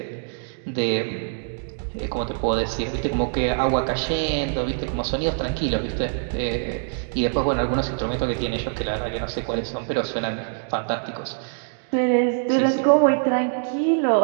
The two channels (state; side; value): silent; left; digital silence